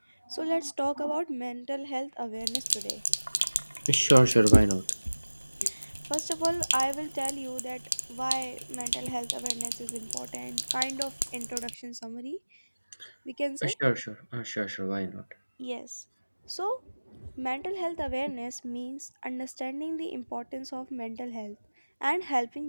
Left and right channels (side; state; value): both; inverted; correlation -1.00